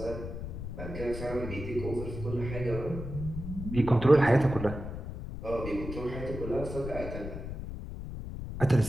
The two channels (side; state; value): left; noise; rumble, 8 dB below the sound